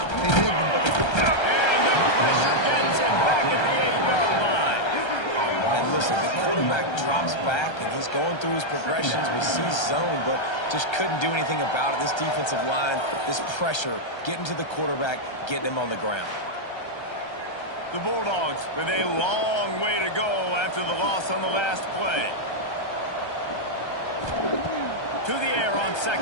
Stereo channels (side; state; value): right; late; 1.3 ms